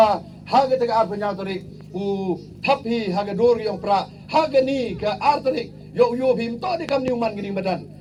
ha ke ar penya tarik u thapi ha ke dor yang pra ha ke ni ke ar tarik yo bim to di kam ni man gini badan.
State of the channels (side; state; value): both; identical; correlation 1.00